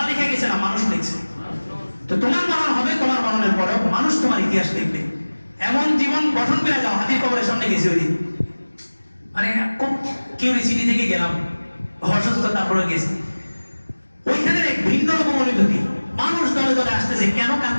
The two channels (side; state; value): both; inverted; correlation -1.00